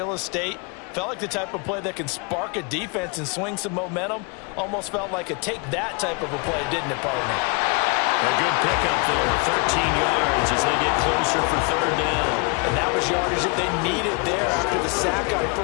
estate. Felt like the type of play that can spark a defense and swing some momentum. Almost felt like a take that type of a play, didn't it, partner? A good pickup there, 13 yards as they get closer for third down. And that was yardage that they needed there after the sack on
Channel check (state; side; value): quieter; right; 32.3 dB